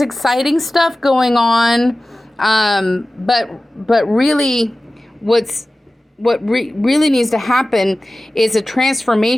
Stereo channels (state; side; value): normal; both; correlation 0.96